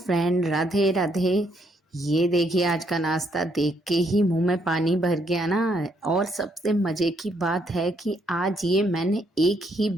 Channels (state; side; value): normal; both; correlation 0.72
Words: Radhe Radhe. ये देखिए, आज का नाश्ता देख के ही मुंह में पानी भर गया ना। और सबसे मजे की बात है कि आज ये मैंने एक ही